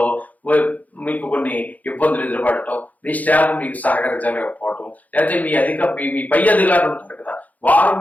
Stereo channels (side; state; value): right; late; 0.077 ms